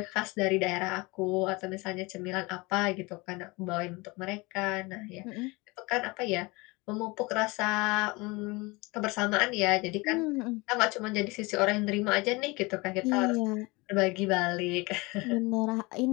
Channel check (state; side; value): quieter; right; 24.8 dB